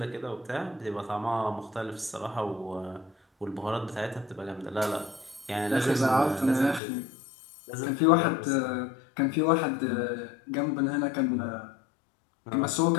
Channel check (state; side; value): drops out; right; at 6.8 s